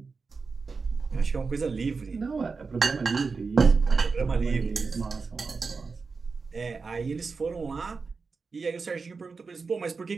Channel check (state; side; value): quieter; left; 4.6 dB